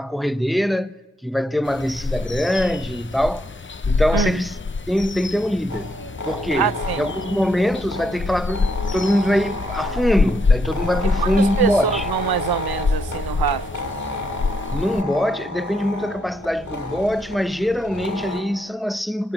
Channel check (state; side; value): normal; both; correlation 0.77